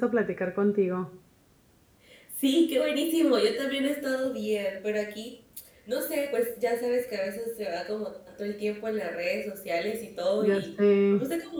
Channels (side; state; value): both; identical; correlation 1.00